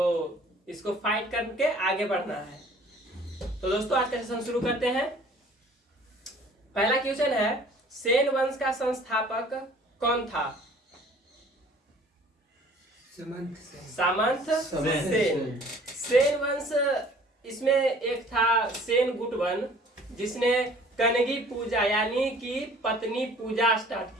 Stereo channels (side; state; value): both; normal; correlation 0.52